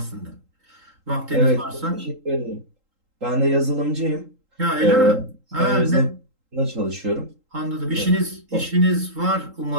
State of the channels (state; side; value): late; left; 3.8 ms